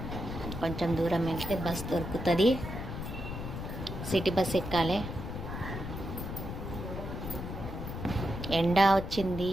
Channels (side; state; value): left; noise; rumble, 6 dB below the sound